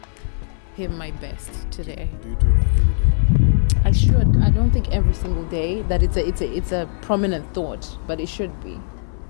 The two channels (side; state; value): right; silent; 60 dB below the other